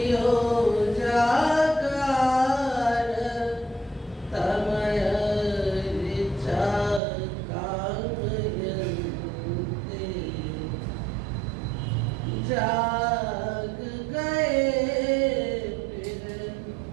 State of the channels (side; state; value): left; drops out; at 7.0 s